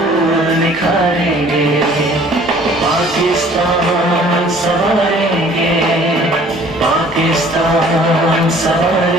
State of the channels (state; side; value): normal; both; correlation 0.53